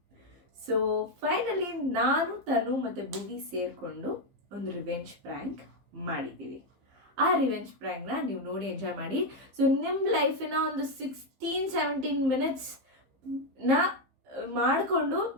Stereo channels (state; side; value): late; left; 15 ms